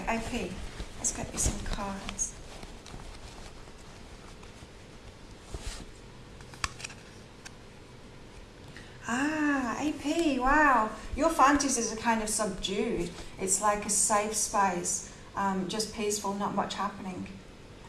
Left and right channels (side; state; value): both; identical; correlation 1.00